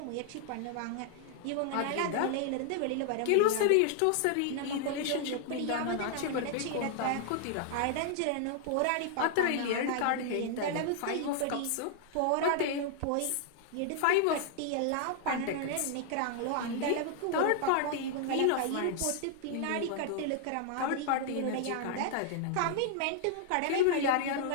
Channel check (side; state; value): both; different; correlation 0.00